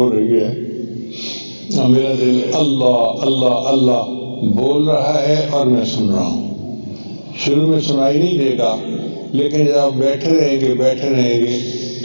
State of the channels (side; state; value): both; inverted; correlation -1.00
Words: رہی ہے. میرا دل اللہ اللہ اللہ بول رہا ہے اور میں سن رہا ہوں. شروع میں سنائی نہیں دے گا، لیکن جب آپ بیٹھے رہیں گے